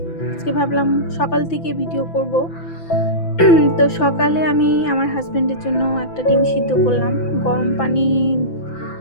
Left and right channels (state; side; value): late; right; 5.9 ms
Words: আজকে ভাবলাম সকাল থেকে ভিডিও করব। তো সকালে আমি আমার হাজব্যান্ডের জন্য একটা ডিম সিদ্ধ করলাম, গরম পানি